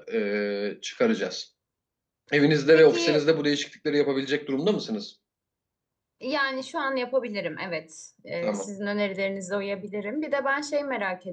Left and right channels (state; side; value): identical; both; correlation 1.00